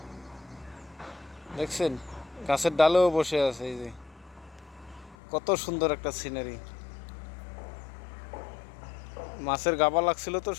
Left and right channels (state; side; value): drops out; right; at 5.2 s